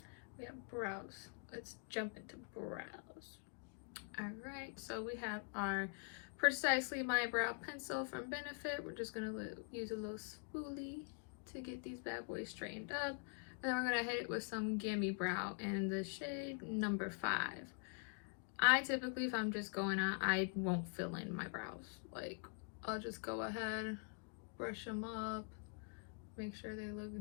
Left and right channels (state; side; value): quieter; right; 37.6 dB